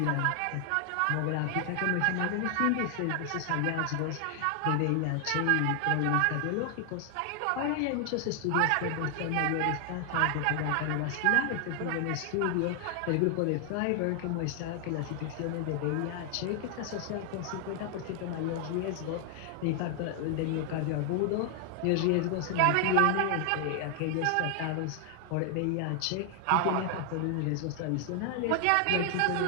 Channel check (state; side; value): different; both; correlation 0.00